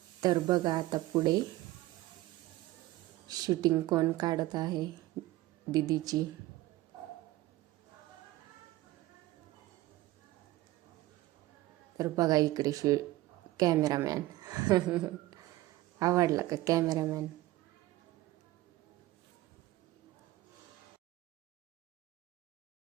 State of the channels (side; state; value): left; quieter; 17.3 dB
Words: तर बघा आता पुढे शूटिंग कोण काढत आहे दीदीची. तर बघा इकडे कॅमेरामॅन. आवडला का कॅमेरामॅन?